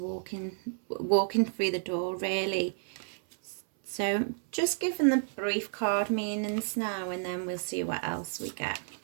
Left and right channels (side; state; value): left; silent; 57 dB below the other